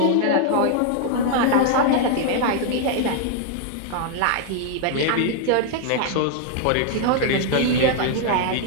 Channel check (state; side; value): different; both; correlation 0.00